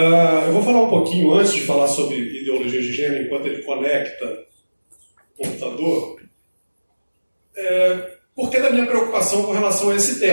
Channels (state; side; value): inverted; both; correlation -1.00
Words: eu vou falar um pouquinho, antes de falar sobre ideologia de gênero, enquanto ele conecta o computador, porque da minha preocupação com relação a esse